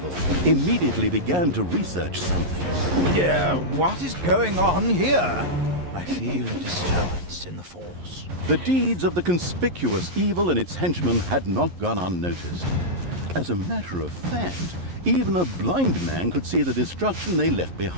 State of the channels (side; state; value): left; late; 11 ms